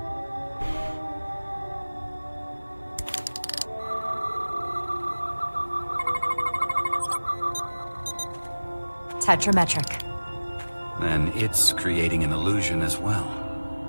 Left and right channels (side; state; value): both; inverted; correlation -1.00